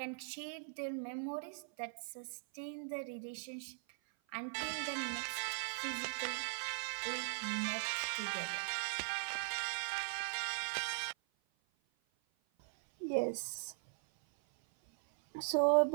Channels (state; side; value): silent; left; 51 dB below the other